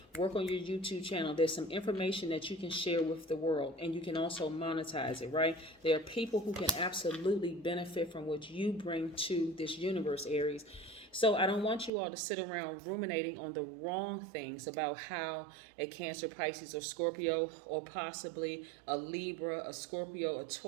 Work on your YouTube channel. There's some information that you can share with the world, and you can also monetize it, right? There are people who can absolutely benefit from what you bring to this universe, Aries. So I don't want you all to sit around ruminating on the wrong things about how a Cancer, Pisces, or Scorpio, or possibly a Libra, a Scorpio, a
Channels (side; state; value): left; drops out; at 11.9 s